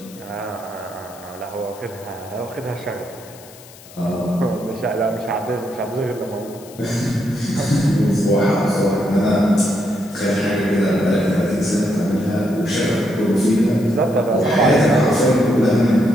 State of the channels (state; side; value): noise; left; hiss, 21 dB below the sound